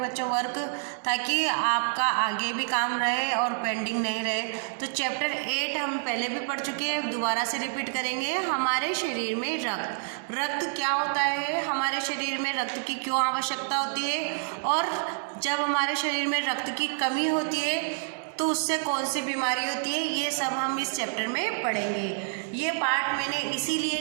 बच्चों वर्क, ताकि आपका आगे भी काम रहे और पेंडिंग नहीं रहे। तो चैप्टर 8 हम पहले भी पढ़ चुके हैं, दोबारा से रिपीट करेंगे। हमारे शरीर में रक्त क्या होता है, हमारे शरीर में रक्त की क्यों आवश्यकता होती है, और जब हमारे शरीर में रक्त की कमी होती है तो उससे कौन सी बीमारी होती है, ये सब हम इस चैप्टर में पढ़ेंगे। ये पार्ट मैंने इसीलिए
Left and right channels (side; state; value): left; silent; digital silence